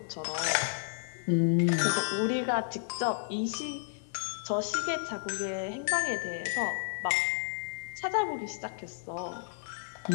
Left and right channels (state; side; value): silent; right; digital silence